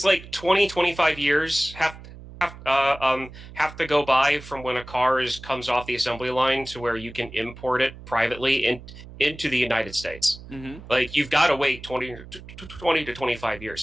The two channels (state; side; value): noise; right; hum, 16 dB below the sound